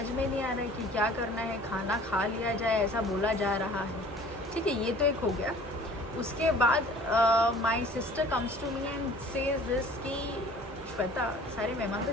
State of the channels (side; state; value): both; normal; correlation 0.49